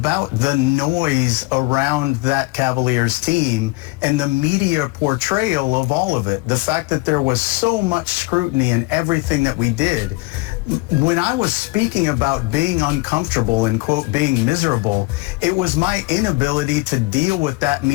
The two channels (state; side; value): quieter; right; 23.3 dB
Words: the noise around that Cavaliers team and the media portrayal of all of it. The fact that there was so much scrutiny in everything that we did. When I was speaking about being uncomfortable and, quote, being miserable, it was my inability to deal with that